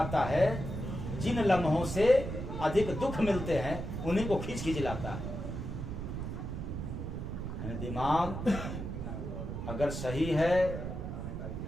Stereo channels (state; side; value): noise; right; rumble, 5 dB below the sound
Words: है। जिन लम्हों से अधिक दुख मिलते हैं उन्हीं को खींच खींच लाता है। दिमाग अगर सही है